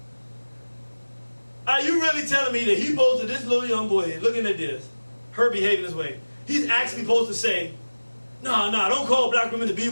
Are you really telling me that he posted this little young boy looking at this, her behaving this way? He's actually supposed to say, no, don't call black women the B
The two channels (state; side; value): inverted; both; correlation -1.00